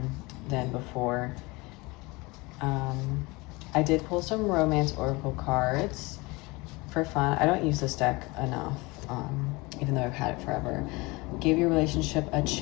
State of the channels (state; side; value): quieter; right; 24.2 dB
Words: before. I did pull some romance oracle cards for fun. I don't use this deck enough, even though I've had it forever. Give your relationship a